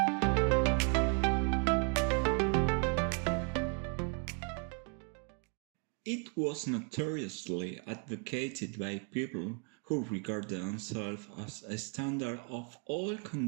It was notoriously advocated by people who regard themselves as a standard of all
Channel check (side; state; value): left; quieter; 35.6 dB